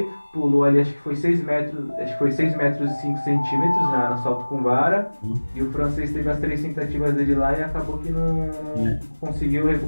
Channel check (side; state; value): both; inverted; correlation -1.00